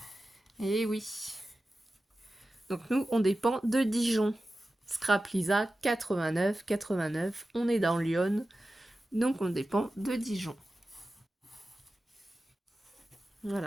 Et oui. Donc nous, on dépend de Dijon. Scrap Lisa, 89, 89. On est dans Lyon. Donc on dépend de Dijon.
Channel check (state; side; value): normal; both; correlation 0.94